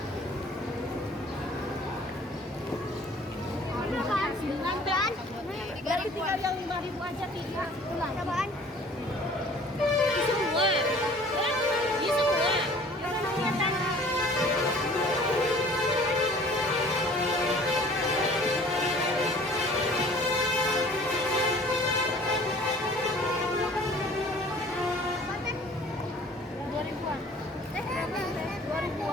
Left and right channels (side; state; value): both; normal; correlation 0.50